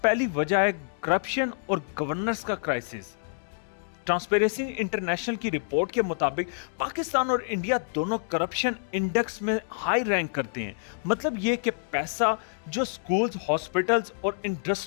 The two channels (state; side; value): silent; right; digital silence